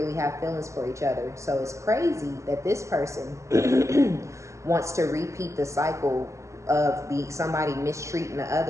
have feelings for each other. So it's crazy that this person wants to repeat the cycle of somebody mistreating the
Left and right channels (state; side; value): late; left; 0.14 ms